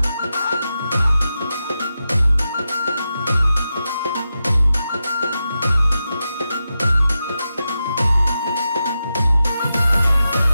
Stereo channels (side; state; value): both; inverted; correlation -0.89